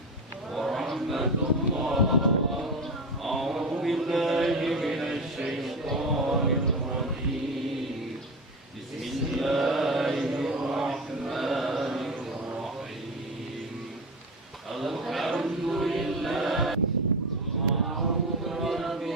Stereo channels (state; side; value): normal; both; correlation 0.21